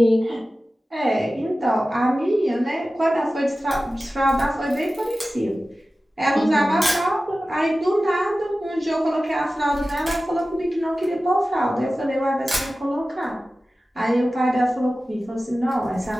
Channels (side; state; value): both; normal; correlation 0.95